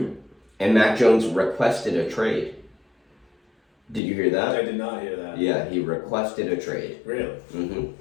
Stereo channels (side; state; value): right; drops out; at 4.0 s